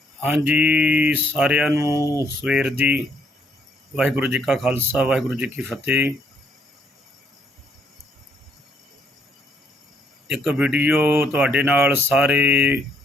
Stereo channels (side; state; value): both; normal; correlation 0.69